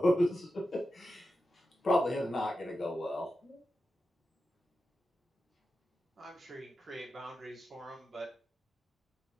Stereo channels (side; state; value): both; normal; correlation 0.90